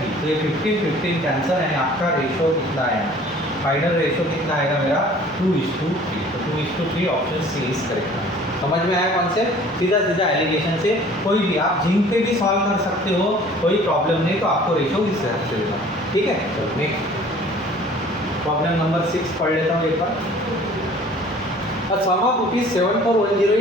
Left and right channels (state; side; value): normal; both; correlation 0.50